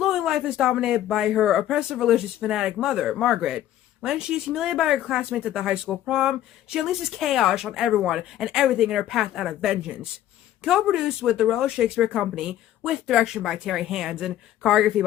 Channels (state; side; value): quieter; right; 12.5 dB